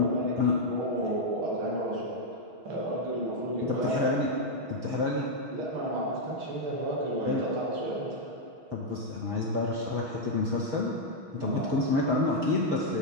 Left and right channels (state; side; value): late; left; 6.3 ms